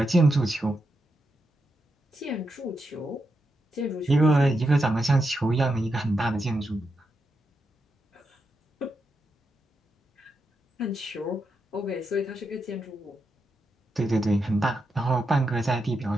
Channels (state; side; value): normal; both; correlation 0.85